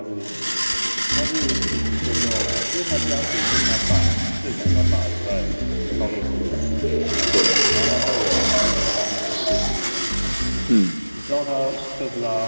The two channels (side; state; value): both; inverted; correlation -1.00